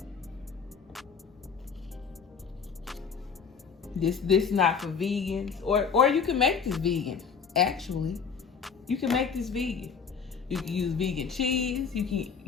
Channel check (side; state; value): right; quieter; 6.2 dB